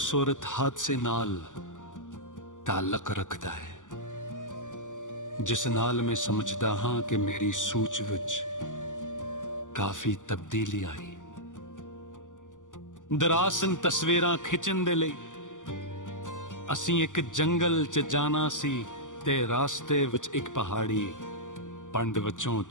ਹਾਦਸੇ ਨਾਲ ਤਾਲੁਕ ਰੱਖਦਾ ਹੈ ਜਿਸ ਨਾਲ ਮੈਂ ਸਮਝਦਾ ਹਾਂ ਕਿ ਮੇਰੀ ਸੋਚ ਵਿੱਚ ਕਾਫੀ ਤਬਦੀਲੀ ਆਈ। ਦਰਾਸਨ ਤਸਵੀਰਾਂ ਖਿੱਚਣ ਦੇ ਲਈ ਅਸੀਂ ਇੱਕ ਜੰਗਲ 'ਚ ਜਾਣਾ ਸੀ ਤੇ ਰਾਸਤੇ ਵਿੱਚ ਇੱਕ ਪਹਾੜੀ ਪੰਡ ਵਿੱਚੋਂ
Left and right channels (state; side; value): late; right; 0.87 ms